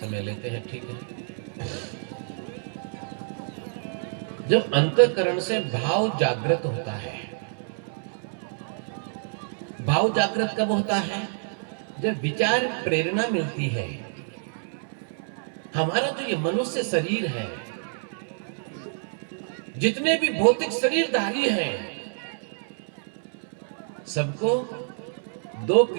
लेते हैं, ठीक है। जब अंतःकरण से भाव जागृत होता है, भाव जागृत कब होता है? जब विचार प्रेरणा मिलती है। हमारा जो ये मनुष्य शरीर है, जितने भी भौतिक शरीरधारी हैं, सबको दो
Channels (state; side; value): silent; left; 60 dB below the other